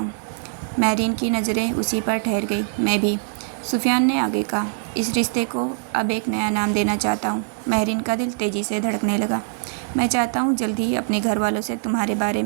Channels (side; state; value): left; silent; 64 dB below the other